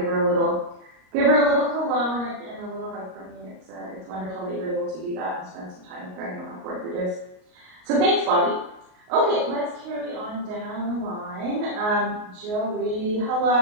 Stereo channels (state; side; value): late; left; 38 ms